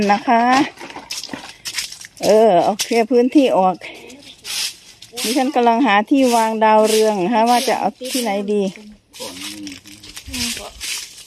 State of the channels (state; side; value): identical; both; correlation 1.00